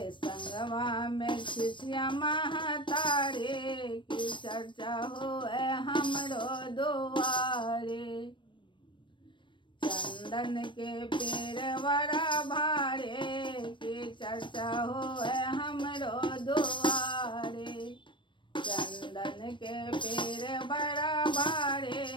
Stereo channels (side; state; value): right; late; 0.23 ms